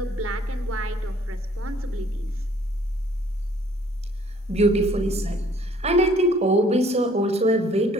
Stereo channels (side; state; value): both; normal; correlation 0.59